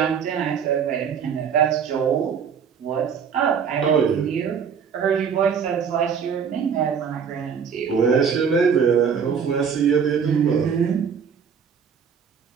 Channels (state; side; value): quieter; left; 6.9 dB